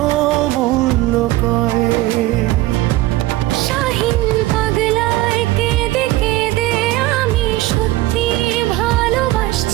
মূল্য কয়ে। শাহিন পাগলায় কেঁদে কেঁদে আমি সত্যি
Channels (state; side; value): quieter; left; 17.2 dB